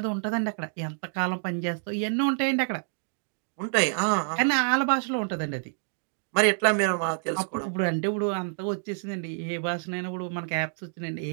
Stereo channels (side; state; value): left; silent; digital silence